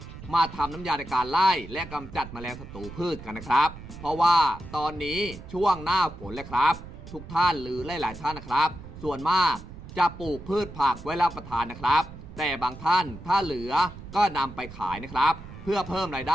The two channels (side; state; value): right; noise; rumble, 14 dB below the sound